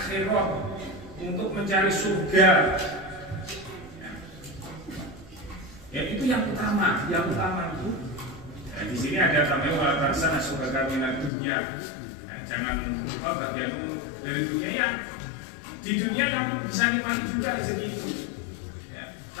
untuk mencari surga. Ya itu yang utama itu Nah, di sini ada tambahan wala tansa nasibaka minad dunya. Nah, jangan lupa bagianmu dari dunia ya. Di dunia kamu bisa nikmati juga rezeki itu. Ya.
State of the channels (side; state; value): right; drops out; at 11.3 s